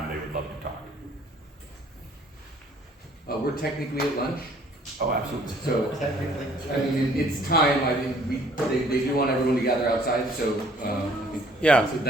they would love to talk. We're technically at lunch. Oh, absolutely. So, I mean, it's time. I think they do want everyone to gather outside. So, I think Yeah.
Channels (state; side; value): normal; both; correlation 0.59